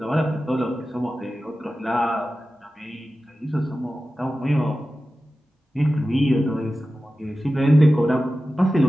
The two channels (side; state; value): both; normal; correlation 0.94